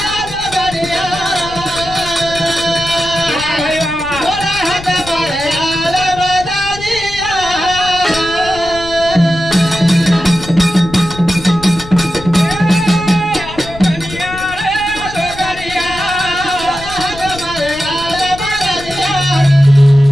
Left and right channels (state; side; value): noise; left; rumble, 14 dB below the sound